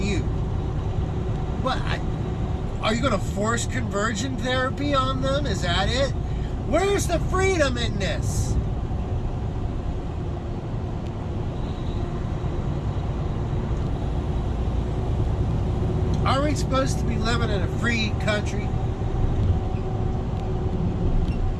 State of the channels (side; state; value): both; identical; correlation 1.00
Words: you. What? Are you going to force conversion therapy on them? Is that it? Where's the freedom in this? Are we supposed to be living in a free country?